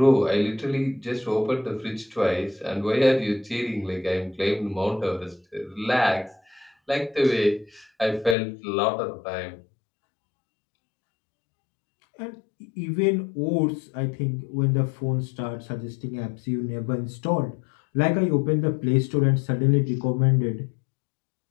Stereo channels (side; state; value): right; drops out; at 8.3 s